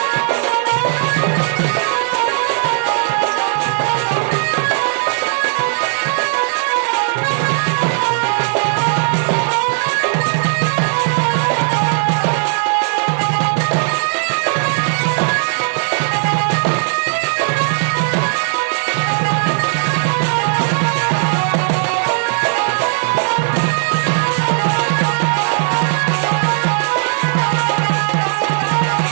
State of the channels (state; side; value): silent; left; digital silence